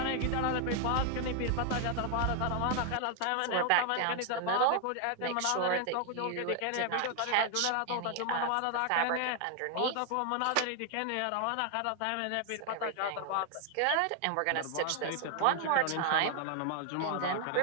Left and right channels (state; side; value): different; both; correlation 0.00